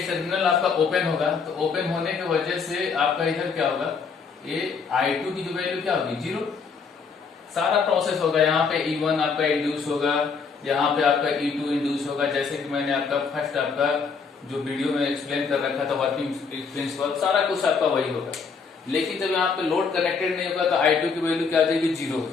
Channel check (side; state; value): right; quieter; 5.4 dB